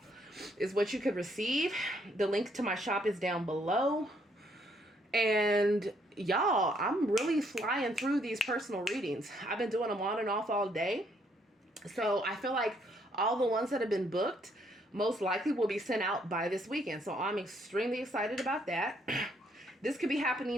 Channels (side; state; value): both; normal; correlation 0.70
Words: is what you could receive. The link to my shop is down below. And y'all, I'm really flying through these personal readings. I've been doing them on and off all day, so I feel like all the ones that have been booked most likely will be sent out by this weekend, so I'm extremely excited about that. This could be